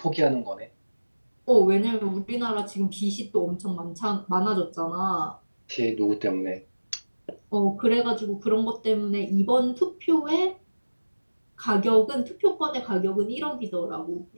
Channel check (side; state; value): both; inverted; correlation -1.00